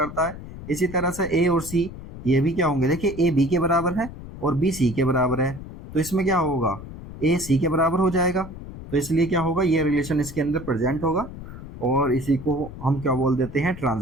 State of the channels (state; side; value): noise; left; rumble, 13 dB below the sound